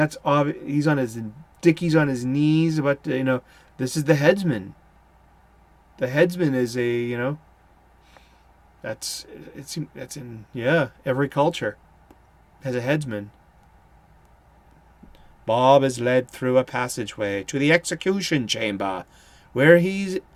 obvious. He's on his Dickie's on his knees, but this is the headsman. The headsman is that's in every culture has a headsman. Bob is led through a passageway to the execution chamber, where he's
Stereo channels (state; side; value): identical; both; correlation 1.00